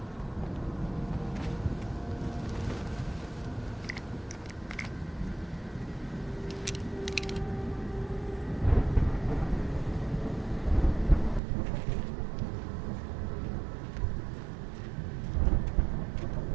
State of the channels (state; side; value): drops out; left; at 11.4 s